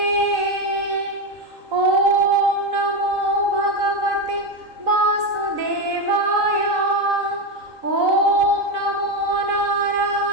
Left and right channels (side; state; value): left; late; 3.8 ms